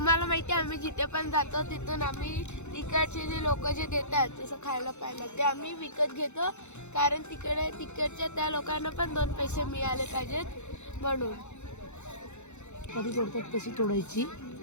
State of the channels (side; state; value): right; late; 0.83 ms